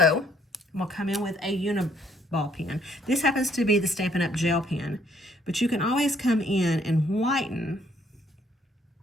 I'm gonna come in with a Uniball pen. This happens to be the Stampin' Up! Gel pen, but you can always come in and whiten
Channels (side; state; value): both; normal; correlation 0.66